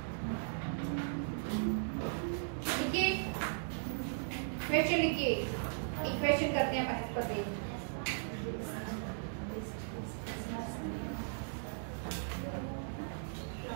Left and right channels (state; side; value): silent; left; digital silence